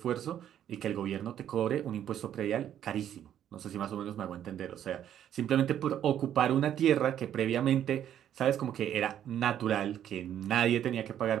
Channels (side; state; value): left; quieter; 10.4 dB